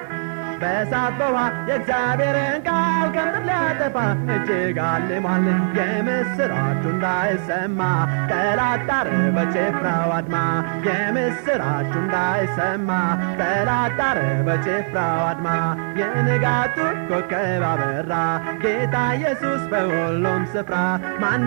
በእሳት በውሃ የእግዚአብሔርን ቃል ከምድር ሊያጠፋ እጅግ አልሟል የምስራቹ እንዳይሰማ ጠላት ጣረ በጭፍራው አድማ የምስራቹ እንዳይሰማ ጠላት ጣረ በጭፍራው አድማ የንጋቱ ኮከብ አበራ ጌታ ኢየሱስ በሁሉም ስፍራ ማን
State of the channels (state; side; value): silent; left; digital silence